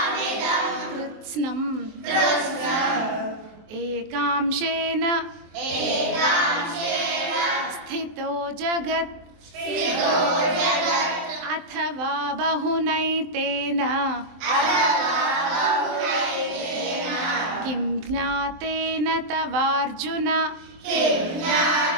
कृत्स्नम् एकांशेन स्थितो जगत् अथवा बहुनैतेन किं ज्ञातेन तवार्जुन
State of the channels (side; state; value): left; late; 23 ms